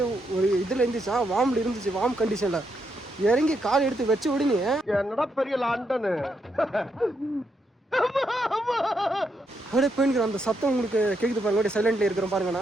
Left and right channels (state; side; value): normal; both; correlation 0.79